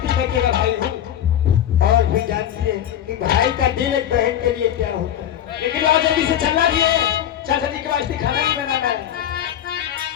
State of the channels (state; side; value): quieter; right; 10.6 dB